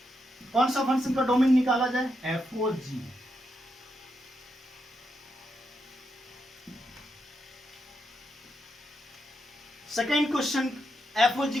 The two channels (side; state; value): both; normal; correlation 0.83